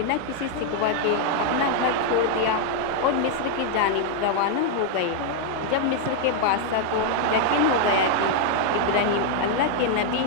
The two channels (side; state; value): both; different; correlation 0.00